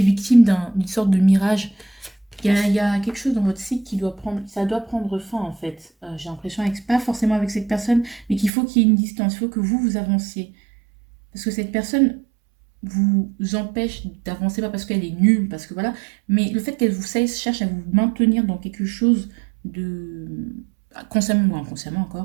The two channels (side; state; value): left; drops out; at 8.5 s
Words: d'une sorte de mirage. Il y a quelque chose dans votre cycle qui doit prendre, ça doit prendre fin en fait. J'ai l'impression, pas forcément avec cette personne, mais qu'il y ait une distance, il faut que vous avanciez. Parce que cette personne vous empêche d'avancer, pas parce qu'elle est nulle, parce que voilà, mais le fait qu'elle vous cherche à vous maintenir dans quelque chose de, consciemment ou inconsciemment